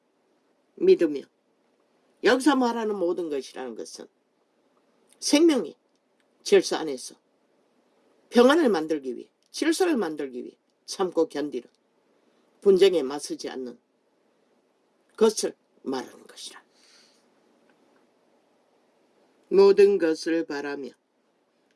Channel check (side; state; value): both; identical; correlation 1.00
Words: 믿으며, 여기서 말하는 모든 것이라는 것은 생명의 질서 안에서 평안을 만들기 위해, 질서를 만들기 위해 참고 견디는, 분쟁에 맞서지 않는 것을 말하는 것이라. 모든 것을 바라며